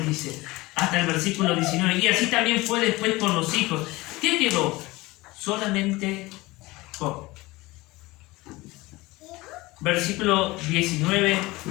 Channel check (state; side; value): quieter; right; 20.9 dB